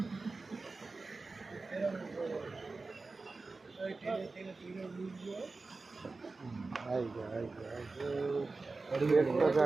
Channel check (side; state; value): left; quieter; 3.7 dB